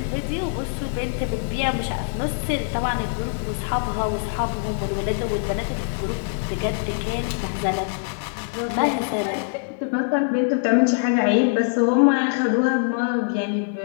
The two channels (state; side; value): silent; right; digital silence